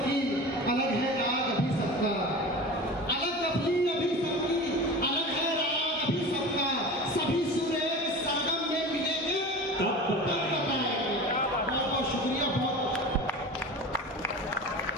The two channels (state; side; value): normal; both; correlation 0.33